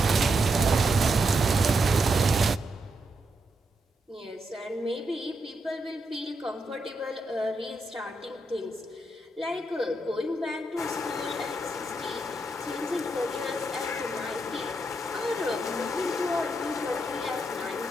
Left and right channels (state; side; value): normal; both; correlation 0.82